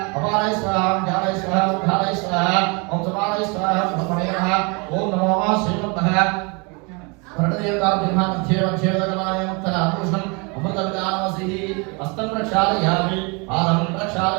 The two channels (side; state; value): left; quieter; 30.8 dB